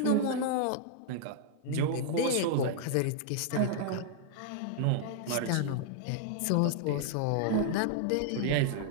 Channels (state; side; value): different; both; correlation -0.01